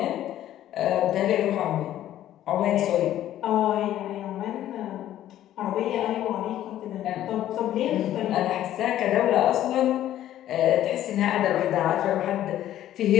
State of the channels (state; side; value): quieter; right; 12.5 dB